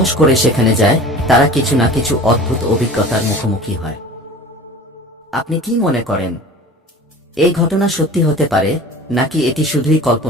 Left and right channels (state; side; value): normal; both; correlation 0.40